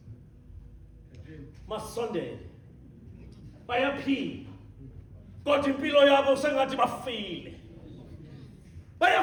Masondele bayaphila kodwa impilo yabo sengathi bafile.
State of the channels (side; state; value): both; identical; correlation 1.00